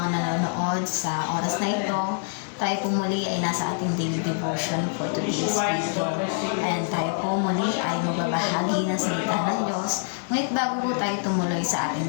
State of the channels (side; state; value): right; silent; 61 dB below the other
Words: nanonood sa oras na ito. Tayo po muli ay nasa ating daily devotion for today's video. And tayo po muli ay magbabahagi ng salita ng Diyos. Ngunit bago po tayo tumuloy sa ating